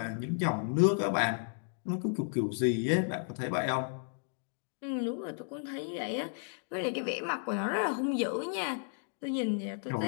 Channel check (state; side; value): silent; right; digital silence